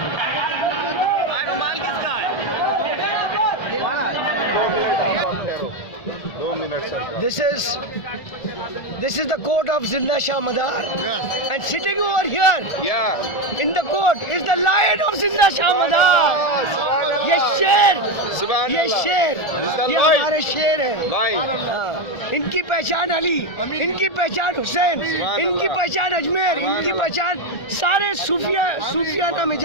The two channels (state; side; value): late; right; 1.4 ms